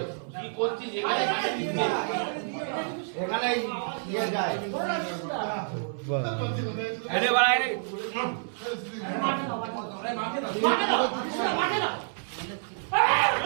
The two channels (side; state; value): left; silent; 59 dB below the other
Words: কি করছিস এখানে এখানে ইয়ে যায় আরে বাড়া আরে